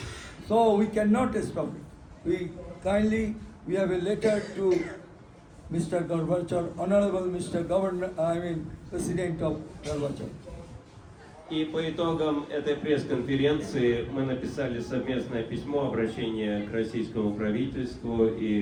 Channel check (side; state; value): both; identical; correlation 1.00